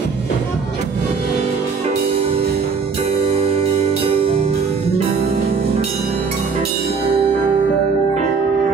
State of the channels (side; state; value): left; quieter; 5.3 dB